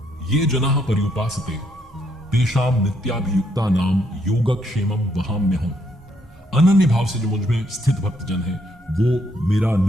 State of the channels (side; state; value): both; normal; correlation 0.73